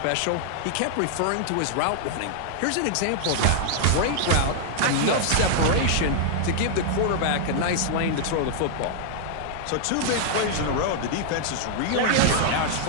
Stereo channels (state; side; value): different; both; correlation -0.01